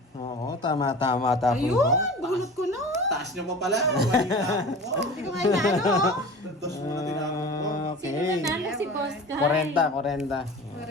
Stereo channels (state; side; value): normal; both; correlation 0.37